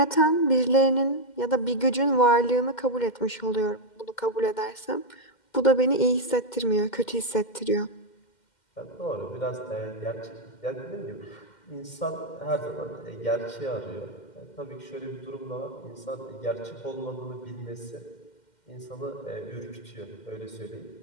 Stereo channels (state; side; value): late; right; 2.1 ms